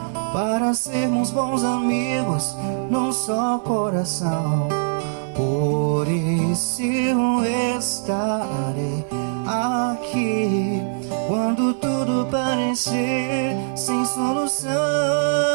para sermos bons amigos num só coração. Por isso eu estarei aqui quando tudo parecer sem solução.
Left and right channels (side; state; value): left; silent; digital silence